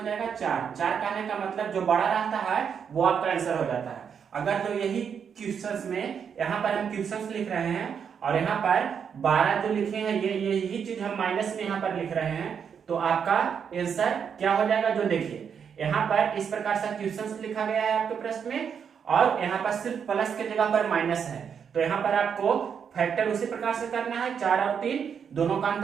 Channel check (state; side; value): quieter; left; 7.2 dB